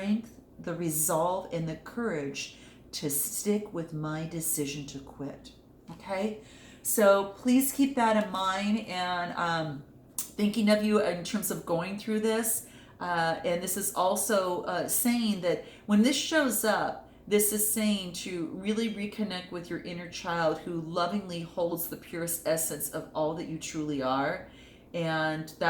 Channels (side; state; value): both; identical; correlation 1.00